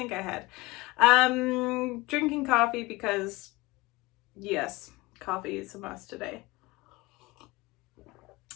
I had. Drinking coffee because, yes, coffee is a must today.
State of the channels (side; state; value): right; quieter; 21.6 dB